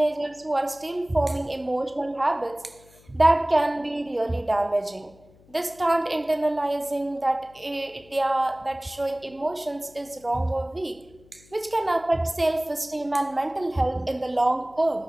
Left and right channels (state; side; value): noise; left; hum, 27 dB below the sound